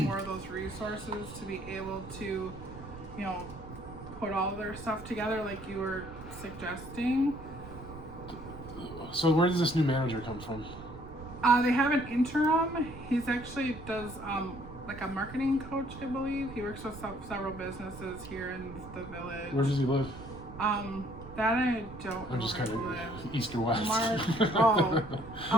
of those resources to be able to, you know, put all their stuff together like you were suggesting. So where does this new manager come from? They have an interim. He's actually does like a marketing coach, I believe. He works with several businesses here in the village. Where does he live? That I don't I'm know just where kind he of lives. east or west. Mark, oh,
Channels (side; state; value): right; noise; rumble, 14 dB below the sound